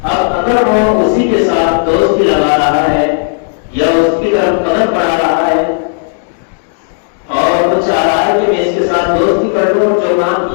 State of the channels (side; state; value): right; silent; digital silence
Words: اب اگر وہ اسی کے ساتھ دوستی لگا رہا ہے یا اس کی طرف قدم بڑھا رہا ہے اور وہ چاہ رہا ہے کہ میں اس کے ساتھ دوستی کر لوں، جو کام